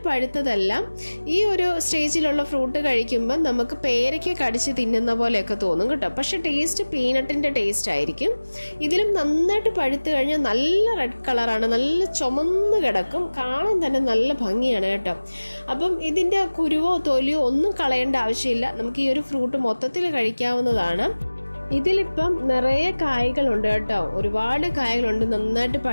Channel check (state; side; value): inverted; both; correlation -1.00